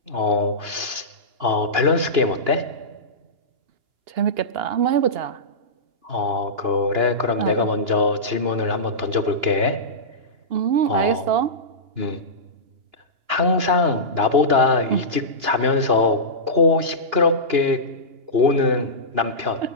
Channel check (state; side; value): late; left; 2.9 ms